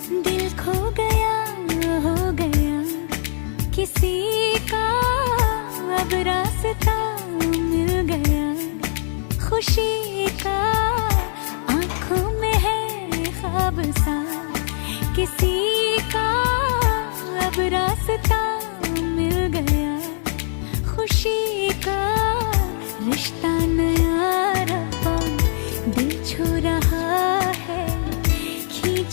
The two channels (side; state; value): right; silent; 65 dB below the other